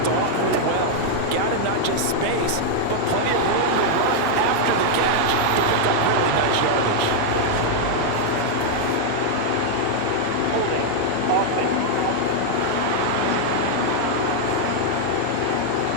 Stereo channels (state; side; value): different; both; correlation 0.00